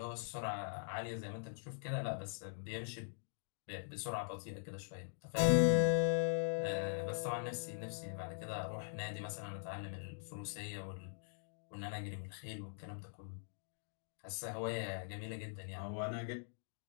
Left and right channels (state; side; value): silent; right; digital silence